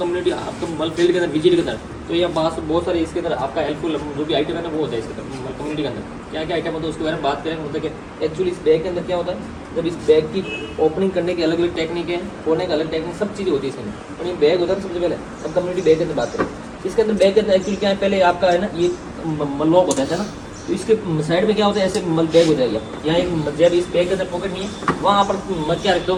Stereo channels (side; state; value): both; identical; correlation 1.00